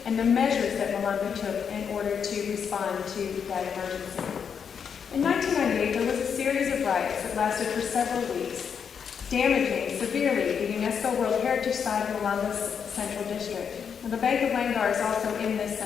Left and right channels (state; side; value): quieter; right; 7.0 dB